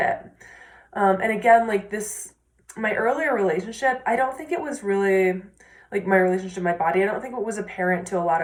And again, like this, my earlier relationship, I don't think it was really like my relationship to my body. I don't think it was apparent to a lot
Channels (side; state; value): both; identical; correlation 1.00